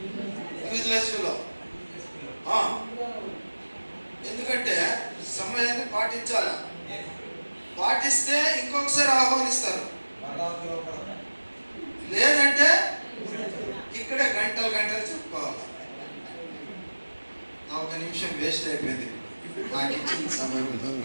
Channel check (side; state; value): both; inverted; correlation -1.00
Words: Useless fellow. ఎందుకంటే సమయాన్ని పాటించాలి. పాటిస్తే ఇంకొకసారి ఆహ్వానిస్తారు, లేదంటే ఇక్కడ గంటలు చెప్పుకోవాలి. నా ఒక నిమిషం వేస్ట్ అయిపోయింది నాకు ఇచ్చిన సమయంలో.